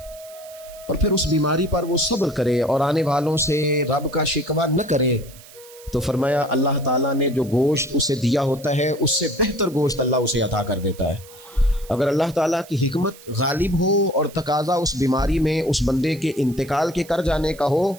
اور پھر اس بیماری پر وہ صبر کرے اور آنے والوں سے رب کا شکوہ نہ کرے، تو فرمایا اللہ تعالیٰ نے جو گوشت اسے دیا ہوتا ہے اس سے بہتر گوشت اللہ اسے عطا کر دیتا ہے۔ اگر اللہ تعالیٰ کی حکمت غالب ہو اور تقاضا اس بیماری میں اس بندے کے انتقال کے کر جانے کا ہو،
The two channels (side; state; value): right; noise; hiss, 21 dB below the sound